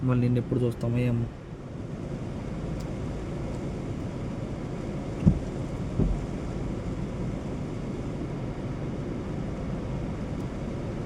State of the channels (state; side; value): identical; both; correlation 1.00